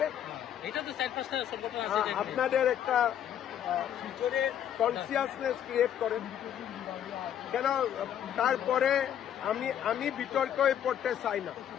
আপনাদের একটা কনসিয়াসনেস ক্রিয়েট করেন। কেন তারপরে আমি বিতর্কে পড়তে চাই না।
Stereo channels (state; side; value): quieter; right; 10.0 dB